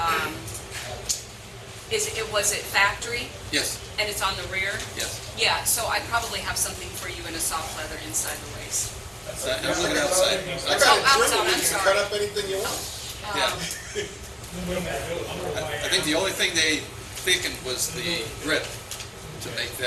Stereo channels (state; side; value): identical; both; correlation 1.00